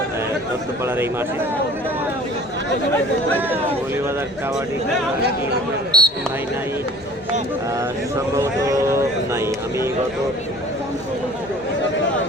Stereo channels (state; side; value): noise; right; hum, 26 dB below the sound